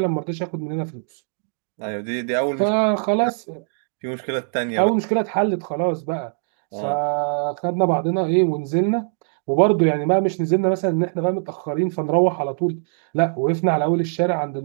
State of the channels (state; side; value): silent; left; 64 dB below the other